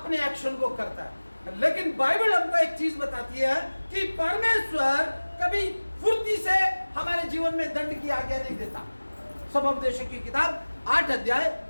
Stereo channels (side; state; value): both; inverted; correlation -1.00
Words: एक्शन को करता है। लेकिन बाइबल हमको एक चीज बताती है कि परमेश्वर कभी फुर्ती से हमारे जीवन में दंड की आज्ञा नहीं देता। सबोपदेशक की किताब 8 अध्याय